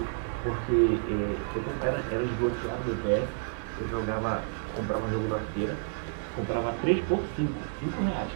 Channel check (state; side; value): silent; left; digital silence